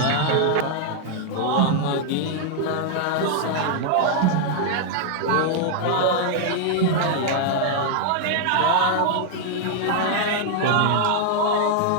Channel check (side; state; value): both; different; correlation 0.00